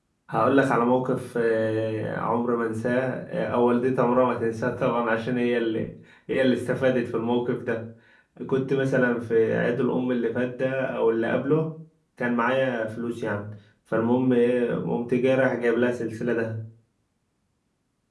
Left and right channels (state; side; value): identical; both; correlation 1.00